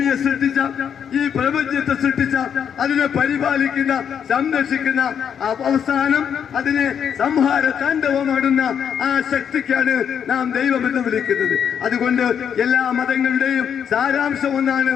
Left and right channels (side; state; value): right; quieter; 8.0 dB